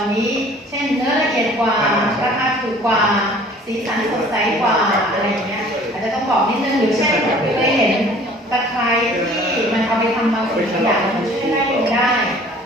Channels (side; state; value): both; normal; correlation 0.51